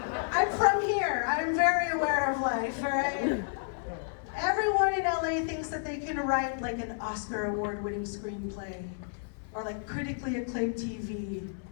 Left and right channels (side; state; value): right; silent; 56 dB below the other